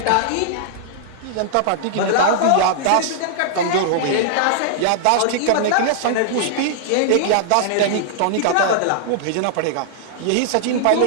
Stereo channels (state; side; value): different; both; correlation -0.01